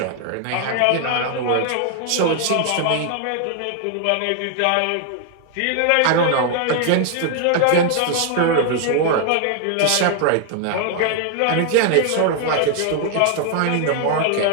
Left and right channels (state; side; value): different; both; correlation 0.00